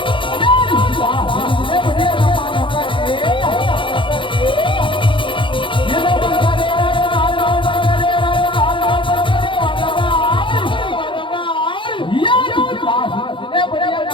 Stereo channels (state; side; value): late; right; 0.24 ms